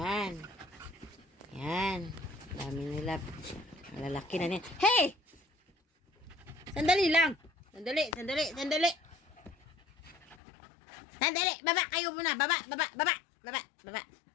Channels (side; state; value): right; drops out; at 10.4 s